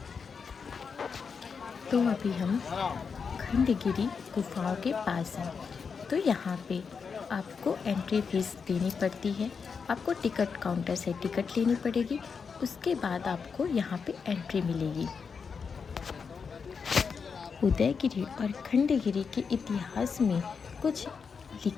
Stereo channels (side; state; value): right; quieter; 5.7 dB